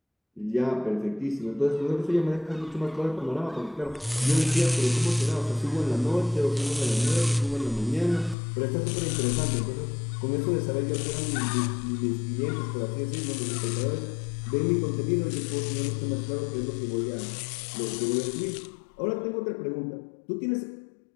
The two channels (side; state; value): right; drops out; at 8.3 s